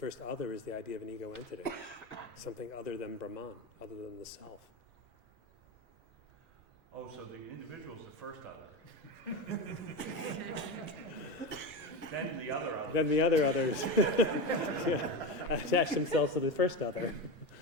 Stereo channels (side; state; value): both; normal; correlation 0.20